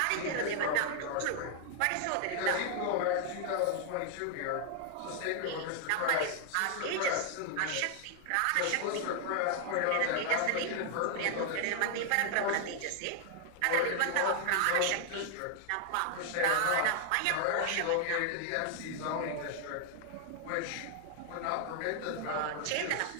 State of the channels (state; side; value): different; both; correlation 0.00